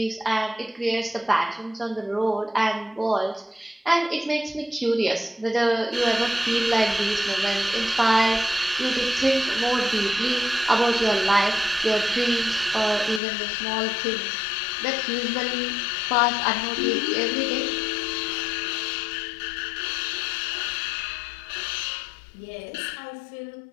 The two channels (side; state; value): right; drops out; at 13.2 s